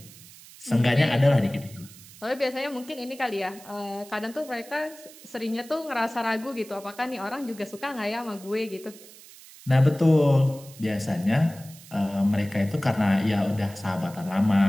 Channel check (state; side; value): noise; right; hiss, 20 dB below the sound